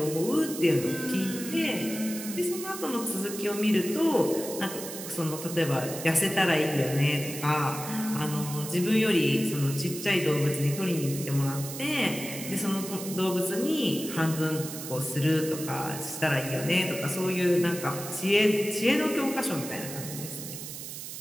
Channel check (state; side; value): noise; right; hiss, 9 dB below the sound